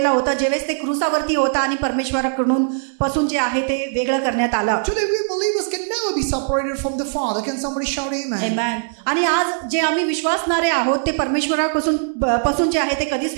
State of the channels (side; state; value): left; silent; digital silence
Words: होता जेव्हा ते क्रूसावरती होता आणि परमेश्वराकडून पासून जे आहे ते वेगळं करण्यात आलं. Today we believers can never be separated from the Father. Can somebody shout amen? Amen. आणि आज जे आम्ही विश्वासणारे आहोत ते परमेश्वरापासून जे आहे ते कधीच